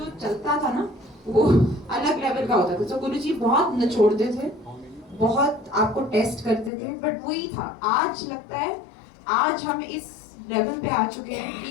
चलता था ना वो अलग लेवल का होता था। तो गुरुजी बहुत निचोड़ते थे, बहुत आपको टेस्ट करते थे, बट वही था। आज लगता है आज हम इस लेवल पे आ चुके हैं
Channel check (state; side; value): drops out; right; at 6.7 s